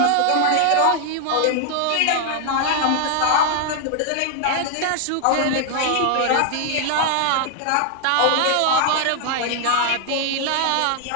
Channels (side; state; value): both; different; correlation 0.00